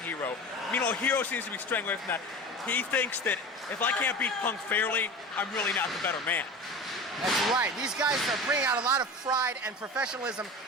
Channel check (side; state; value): both; normal; correlation 0.32